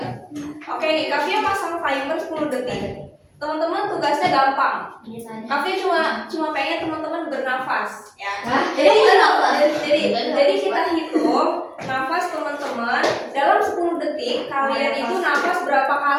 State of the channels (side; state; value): both; identical; correlation 1.00